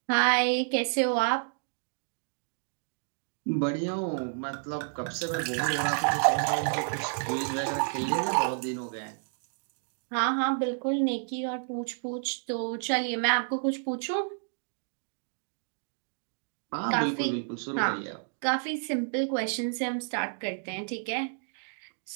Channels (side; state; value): left; silent; digital silence